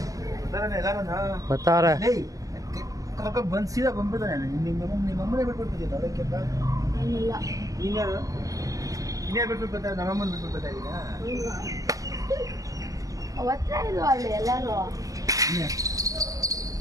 ಬರ್ತಾವ್ರೆ. ಬಂದು ಸೀದಾ ಬಂದ್ಬಿಡ್ತಾನೆ. ನಿಮ್ಮಮ್ಮನೇ ಬಿಟ್ಬಿಡ್ತಿದ್ದೆ ಅದಕ್ಕೆಪ್ಪ ಇನ್ಯಾರು ಬಿಟ್ಬಿಟ್ಟು ಬರ್ತಾರೆ. ನಮ್ಮಮ್ಮನ ಬಿಟ್ಬಿಟ್ಟು ಬರ್ತಾ ಇದ್ದೀರಾ?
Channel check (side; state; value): left; late; 0.17 ms